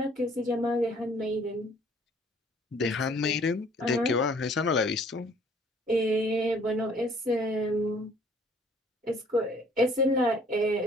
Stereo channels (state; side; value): normal; both; correlation 0.58